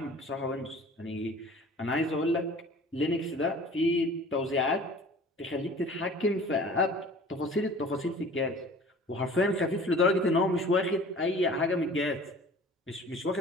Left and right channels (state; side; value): normal; both; correlation 0.45